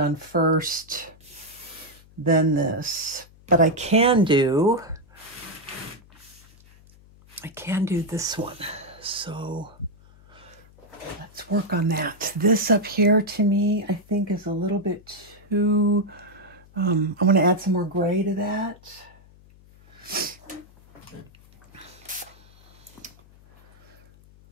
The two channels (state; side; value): noise; left; hum, 25 dB below the sound